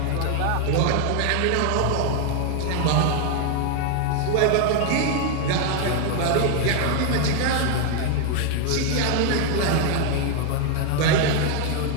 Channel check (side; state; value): both; different; correlation 0.00